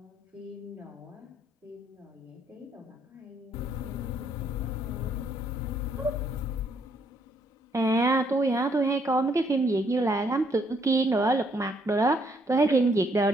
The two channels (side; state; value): both; normal; correlation 0.70